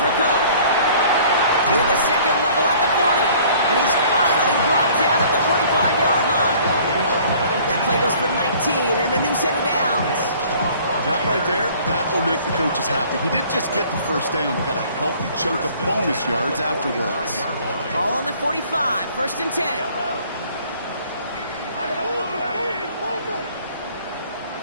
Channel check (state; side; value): inverted; both; correlation -0.53